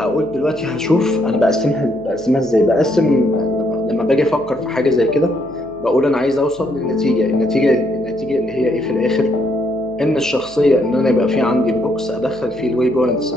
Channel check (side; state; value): left; noise; hum, 26 dB below the sound